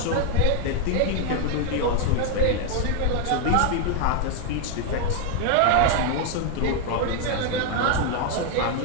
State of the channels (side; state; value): both; different; correlation 0.01